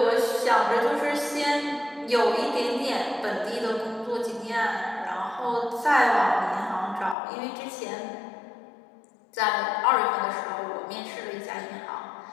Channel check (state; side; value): drops out; right; at 7.2 s